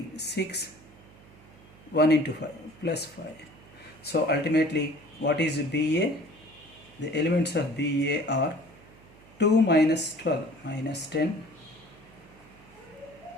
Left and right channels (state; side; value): noise; right; hum, 24 dB below the sound